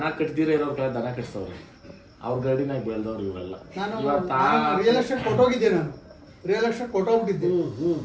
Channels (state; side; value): identical; both; correlation 1.00